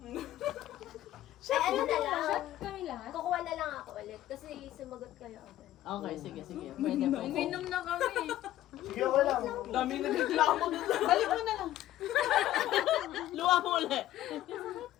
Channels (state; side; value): quieter; right; 13.8 dB